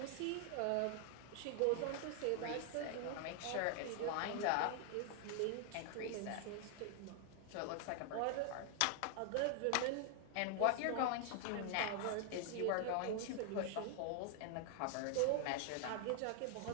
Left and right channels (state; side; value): different; both; correlation 0.00